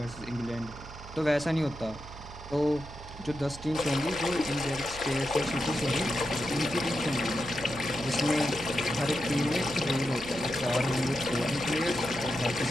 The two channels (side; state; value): right; noise; hum, 15 dB below the sound